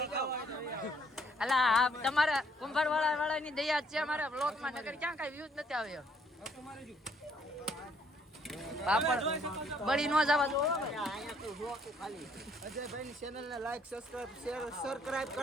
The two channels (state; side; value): normal; both; correlation 0.66